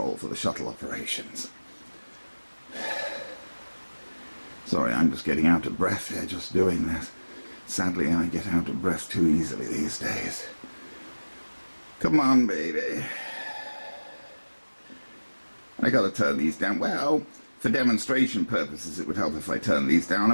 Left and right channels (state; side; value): inverted; both; correlation -1.00